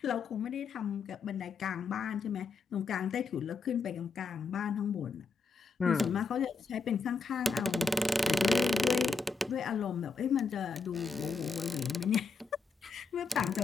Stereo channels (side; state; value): right; quieter; 4.7 dB